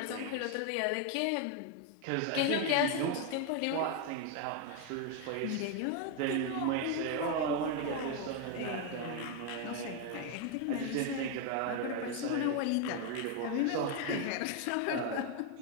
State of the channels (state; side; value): different; both; correlation 0.01